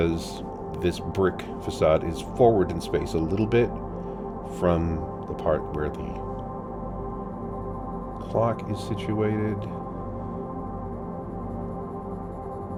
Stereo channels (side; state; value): both; identical; correlation 1.00